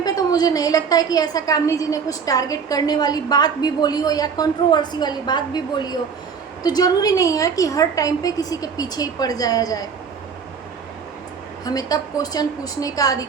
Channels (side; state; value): left; quieter; 6.2 dB